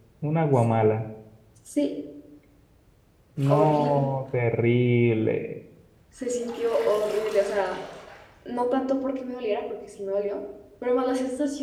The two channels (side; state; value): both; identical; correlation 1.00